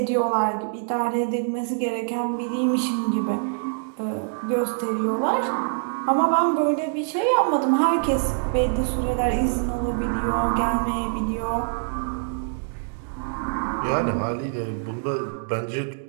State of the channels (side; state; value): left; silent; digital silence